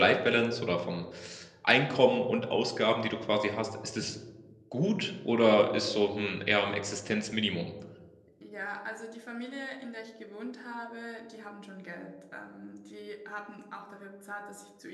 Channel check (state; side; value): identical; both; correlation 1.00